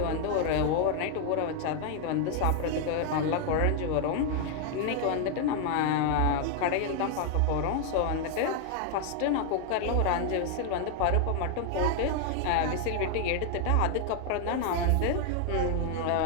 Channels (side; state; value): both; different; correlation 0.00